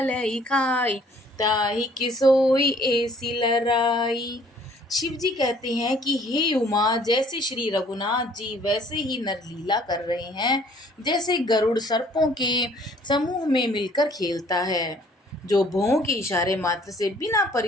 खाई, ताहि किसोई ऐसी लराई। शिव जी कहते हैं कि हे उमा, जैसे श्री रघुनाथ जी वैसे ही नरलीला कर रहे हैं, जैसे गरुड़ सर्पों के समूह में मिलकर खेलता है, जो भौं के इशारे मात्र से बिना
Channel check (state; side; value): normal; both; correlation 0.58